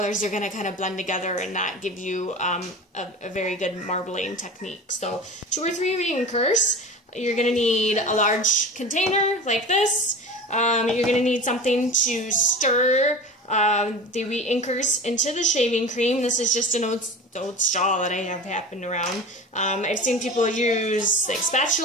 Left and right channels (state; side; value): normal; both; correlation 0.34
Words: are going to kind of blend together and not give you a very good marbling technique. So 2 or 3 re-inkers. You're going to need a large container like this. You're going to need something to stir the re-inkers into the shaving cream. This is just an old straw that I have happened around. I've seen people use like